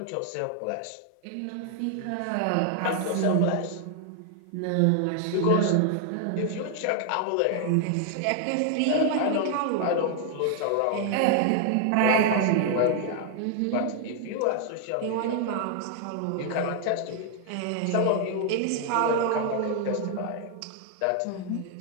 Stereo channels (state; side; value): different; both; correlation 0.00